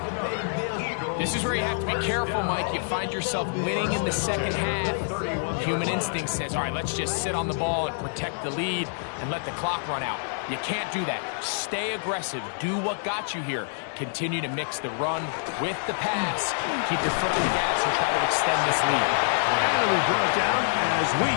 This is where you have to be careful, Mike. You find yourself winning in the second half. Human instinct says, all right, let's just sit on the ball and protect the lead and let the clock run out. You can't do that. Stay aggressive. Do what got you here. Continue to mix the run with the pass. Keep your foot on the gas and try to extend this lead. And we brought down as we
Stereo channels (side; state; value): right; silent; 60 dB below the other